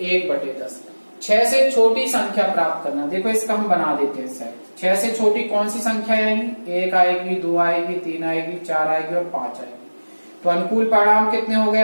1/10। 6 से छोटी संख्या प्राप्त करना, देखो इसका हम बना देते हैं सेट। 6 से छोटी कौन सी संख्या आएगी? 1 आएगी, 2 आएगी, 3 आएगी, 4 आएगी और 5 आएगी। तो अनुकूल परिणाम कितने हो गए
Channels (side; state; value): both; inverted; correlation -1.00